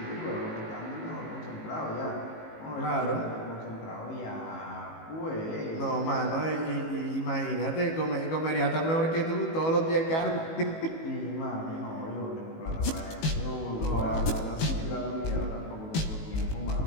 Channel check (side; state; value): right; late; 18 ms